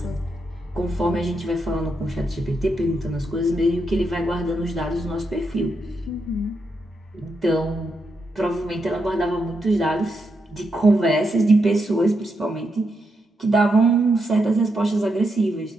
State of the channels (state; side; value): normal; both; correlation 0.82